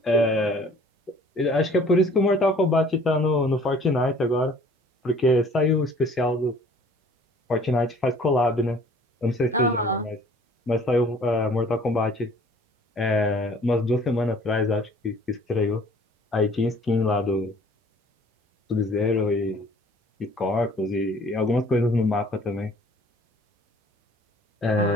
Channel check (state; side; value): normal; both; correlation 0.53